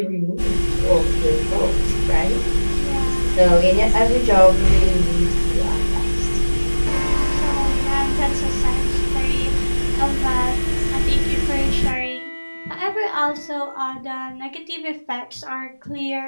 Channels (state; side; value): inverted; both; correlation -1.00